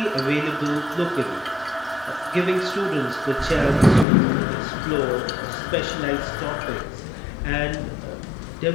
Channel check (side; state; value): right; drops out; at 4.0 s